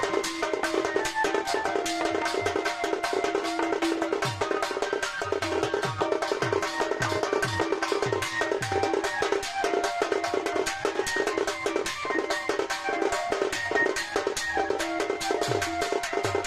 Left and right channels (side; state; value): right; noise; rumble, 27 dB below the sound